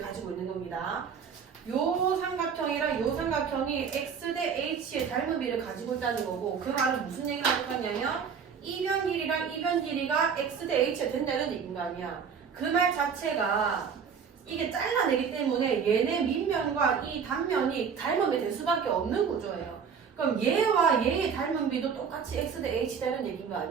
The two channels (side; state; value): left; quieter; 6.6 dB